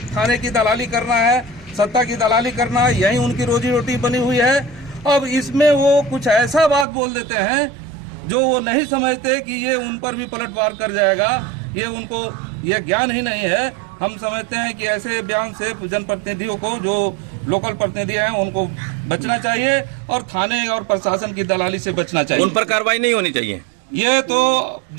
की दलाली करना है, सत्ता की दलाली करना है, यही उनकी रोजी रोटी बनी हुई है। अब इसमें वो कुछ ऐसा बात बोल देते हैं जो वो नहीं समझते कि ये उन पर भी पलटवार कर जाएगा, ये उनको ये ज्ञान ही नहीं है। हम समझते हैं कि ऐसे बयान से जनप्रतिनिधियों को, जो लोकल प्रतिनिधि हैं, उनको बचना चाहिए और थाने और प्रशासन की दलाली से बचना चाहिए। उन पर कार्रवाई नहीं होनी चाहिए। ये तो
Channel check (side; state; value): left; drops out; at 6.9 s